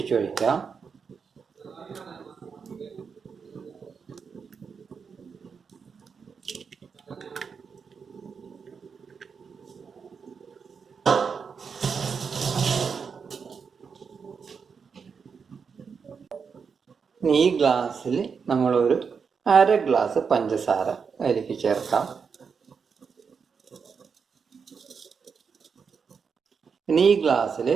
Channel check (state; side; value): quieter; left; 5.9 dB